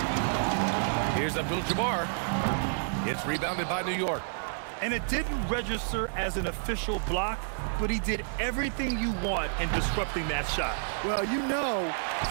Here's Abdul-Jabbar. It's rebounded by New York. And it didn't register as an official block, but he did everything you want in disrupting that shot. Well, you know,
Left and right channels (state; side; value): silent; left; digital silence